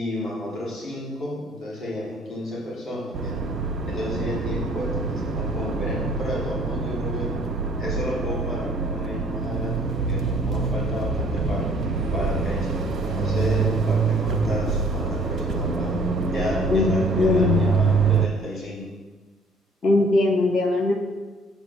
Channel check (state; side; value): normal; both; correlation 0.56